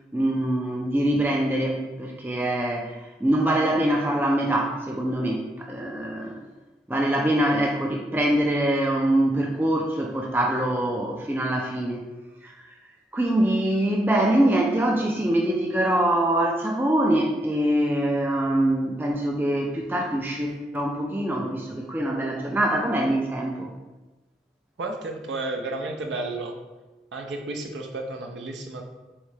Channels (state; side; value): normal; both; correlation 0.78